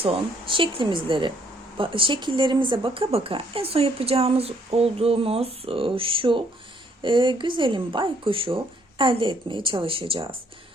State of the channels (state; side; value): normal; both; correlation 0.66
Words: şekillerimize baka baka en son yapacağımız olduğumuz şu güzelim baykuşu elde etmeye çalışacağız.